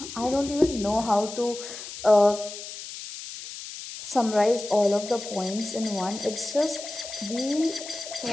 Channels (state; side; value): noise; left; hiss, 11 dB below the sound